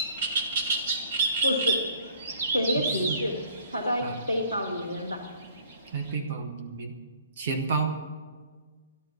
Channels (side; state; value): both; inverted; correlation -0.54